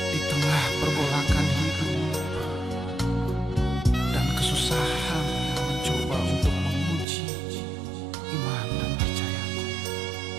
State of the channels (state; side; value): drops out; left; at 7.1 s